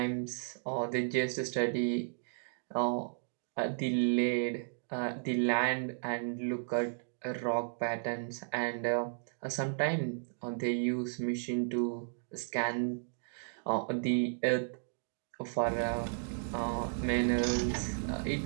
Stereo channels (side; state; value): left; silent; digital silence